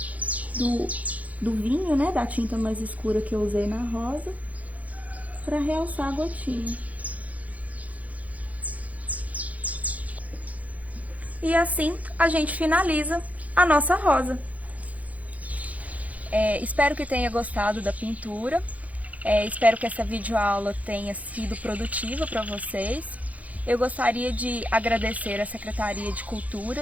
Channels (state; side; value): late; left; 0.072 ms